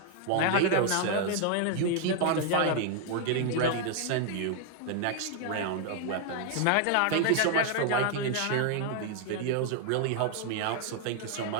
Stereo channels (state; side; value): different; both; correlation 0.00